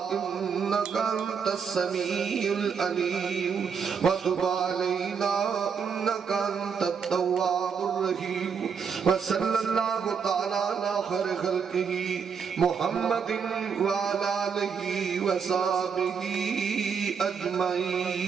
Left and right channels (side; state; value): left; quieter; 6.4 dB